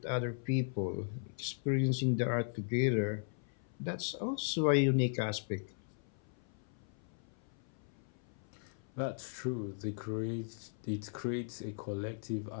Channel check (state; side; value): silent; right; 53 dB below the other